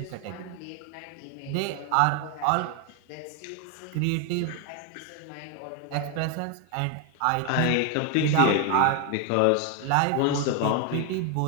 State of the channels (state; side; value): different; both; correlation 0.01